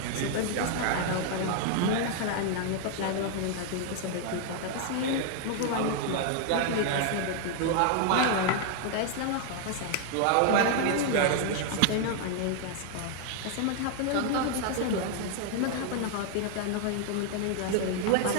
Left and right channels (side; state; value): both; different; correlation 0.00